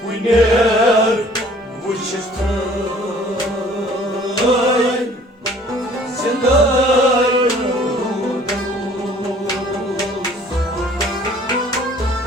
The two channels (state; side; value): normal; both; correlation 0.54